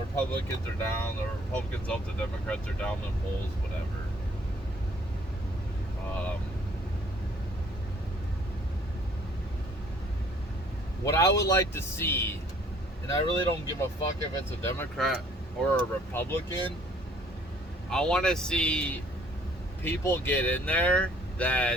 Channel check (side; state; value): both; normal; correlation 0.59